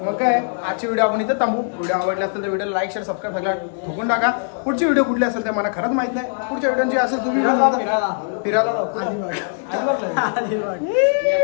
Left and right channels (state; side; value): silent; right; digital silence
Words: मग काय आजची व्हिडिओ आपण इथं थांबू व्हिडिओ आवडला असेल तर व्हिडिओ लाईक शेअर सबस्क्राईब सगळं ठोकून टाका पुढची व्हिडिओ कुठली असेल ते मला खरंच माहित नाही पुढच्या व्हिडिओची असेल तुम्ही फिरायला